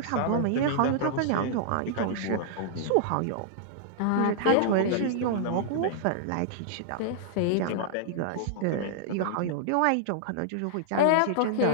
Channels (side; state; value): both; different; correlation -0.01